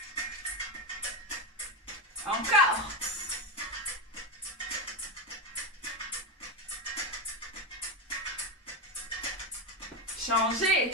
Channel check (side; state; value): both; normal; correlation 0.14